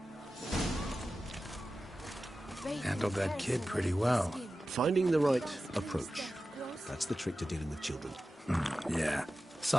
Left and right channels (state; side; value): normal; both; correlation 0.94